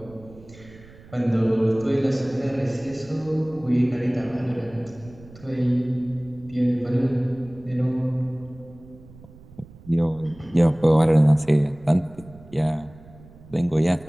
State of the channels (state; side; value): noise; right; rumble, 22 dB below the sound